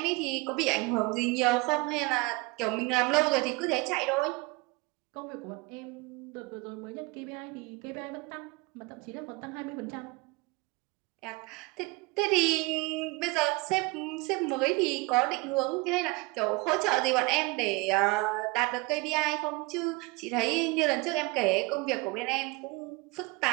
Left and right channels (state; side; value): quieter; left; 25.2 dB